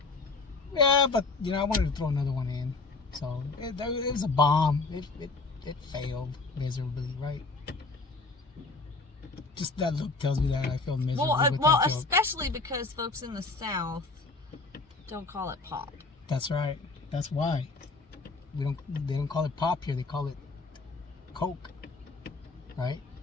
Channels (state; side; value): quieter; right; 3.7 dB